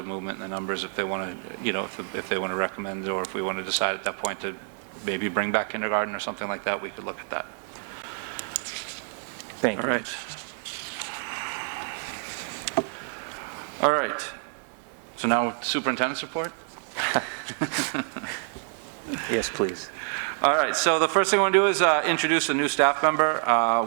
movement in the numbers, if they want to, if they want to recommend, or if we want to decide at that point to maybe bring back kindergarten or something like that, we could look at that. Thank you. All right. All right. So now superintendent's report? Yes, please. All right, so the first thing I want to do is introduce a new staff member.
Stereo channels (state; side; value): silent; left; 60 dB below the other